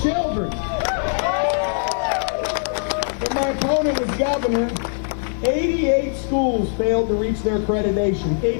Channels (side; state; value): right; silent; 65 dB below the other